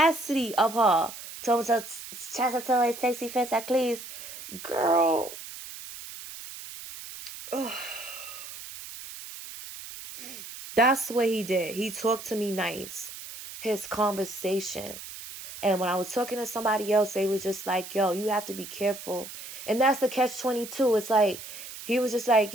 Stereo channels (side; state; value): right; noise; hiss, 12 dB below the sound